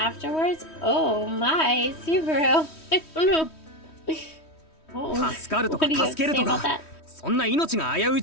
Oh my, Subaru! I don't know. Oh, 助かると what か do you have 助け to る say と about か that? そんな命が危うい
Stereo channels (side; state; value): right; late; 3.1 ms